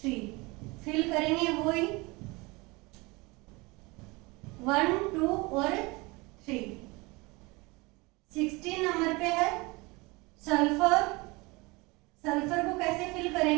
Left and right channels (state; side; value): quieter; left; 24.8 dB